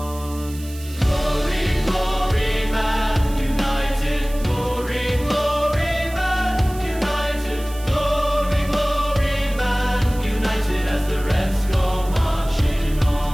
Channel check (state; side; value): noise; right; hiss, 18 dB below the sound